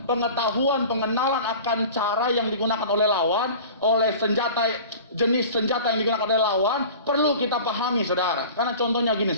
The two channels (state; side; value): inverted; both; correlation -0.40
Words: pengetahuan, pengenalan akan cara yang digunakan oleh lawan, oleh senjata, jenis senjata yang digunakan oleh lawan, perlu kita pahami, saudara. Karena contohnya gini,